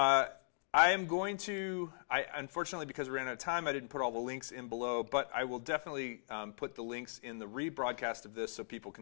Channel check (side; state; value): right; silent; digital silence